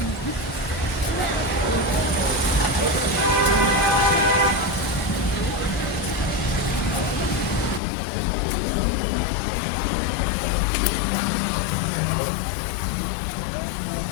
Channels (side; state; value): right; drops out; at 7.8 s